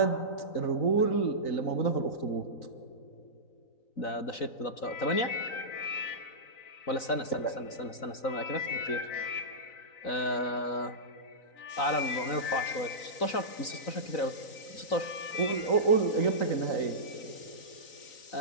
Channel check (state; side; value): late; right; 3.9 ms